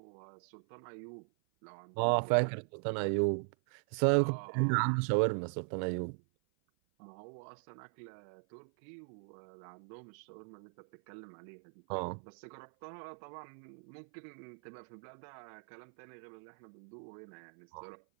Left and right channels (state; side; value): silent; left; 52 dB below the other